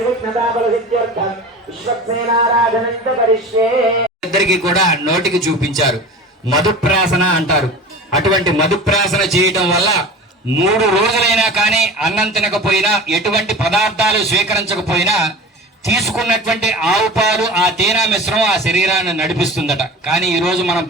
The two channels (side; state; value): both; normal; correlation 0.36